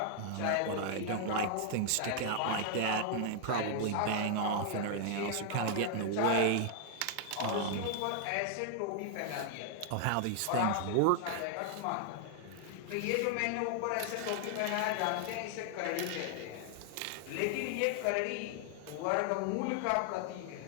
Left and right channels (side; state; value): both; different; correlation 0.00